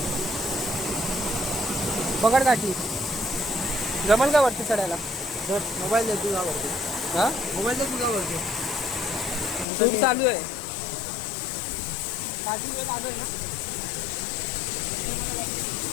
पकड काठी. जमल का वरती चढायला. मोबाईल दे तुझा वरती. हा मोबाईल दे तुझा वरती. शूट चालू आहे. काठी वेळ चालू आहे ना.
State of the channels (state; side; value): drops out; right; at 9.7 s